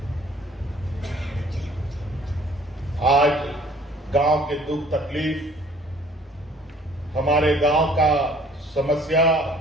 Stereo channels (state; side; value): normal; both; correlation 0.55